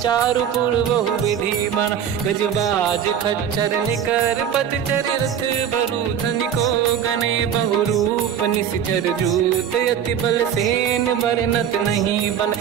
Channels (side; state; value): left; quieter; 8.9 dB